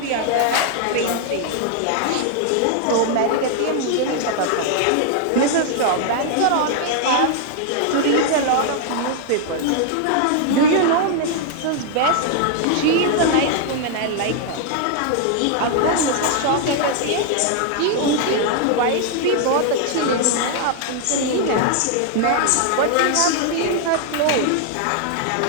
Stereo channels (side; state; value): both; different; correlation 0.00